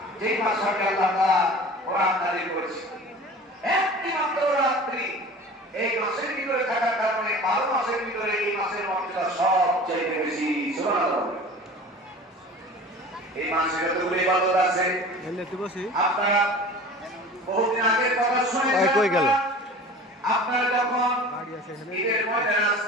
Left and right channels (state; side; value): normal; both; correlation 0.40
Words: যেই মাসে আল্লাহ তাআলা কোরআন নাযিল করেছেন। একটি মাত্র রাত্রি এই মাসের ভিতরে থাকার কারণে 12 মাসের ভিতরে এই মাসের মর্যাদা সবচেয়ে বেশি। সুবহানাল্লাহ। এই মাসে যতগুলো ইবাদত আছে আপনারা বহুদিন আগের কথা শুনে কই গেল আপনারা যখন ঈদের ময়দানে